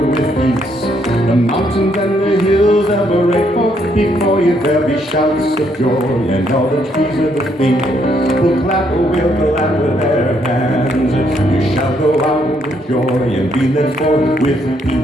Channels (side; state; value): both; normal; correlation 0.72